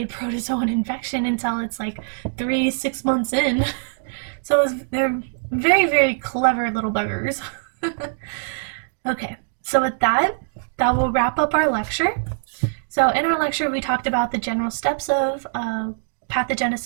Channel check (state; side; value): silent; left; digital silence